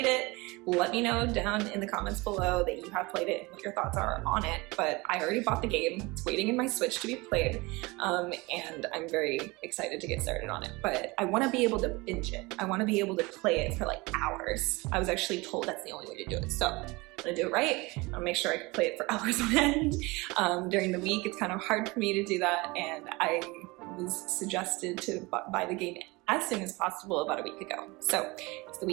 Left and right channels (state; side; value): quieter; left; 24.0 dB